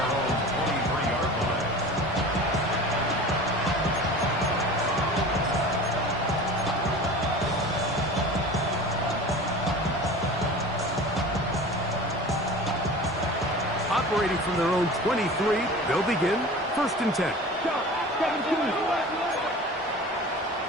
own 23-yard line. Operating from their own 23, they'll begin 1st and 10. Stop. 17.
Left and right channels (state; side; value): normal; both; correlation 0.37